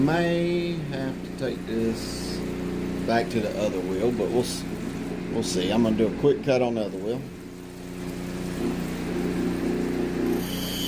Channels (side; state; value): both; identical; correlation 1.00